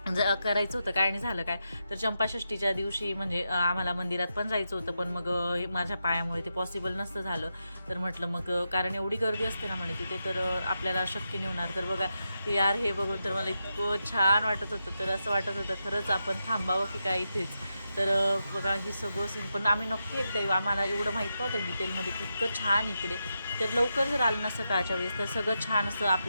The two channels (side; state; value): both; inverted; correlation -0.87